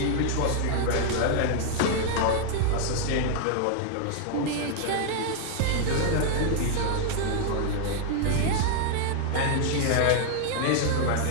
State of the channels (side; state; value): both; different; correlation 0.00